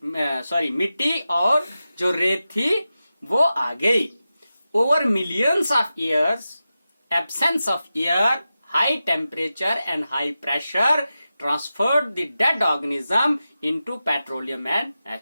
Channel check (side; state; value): both; inverted; correlation -0.92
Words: और जो रेत थी वो आ गई. Over millions of years, absence of air, high temperature and high pressure transferred the dead organism into petroleum and